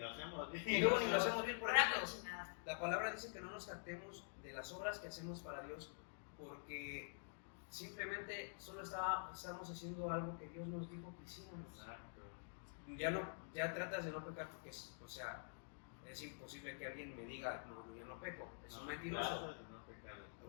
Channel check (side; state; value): right; silent; digital silence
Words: hacemos bien. Y luego ni lo hacemos bien. Por Una ejemplo, cochinada. la palabra dice que no nos jactemos de las obras que hacemos para Dios, porque simplemente solo estamos haciendo algo que Dios nos dijo que hiciéramos. Exacto. Ya tratas de no pecar porque es imposible que alguien me diga, no, yo no peco, es un mentiroso.